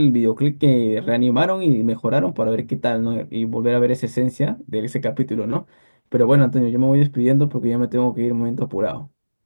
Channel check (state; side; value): inverted; both; correlation -1.00